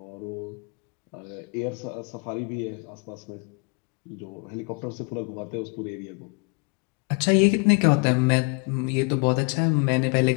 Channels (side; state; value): right; quieter; 34.0 dB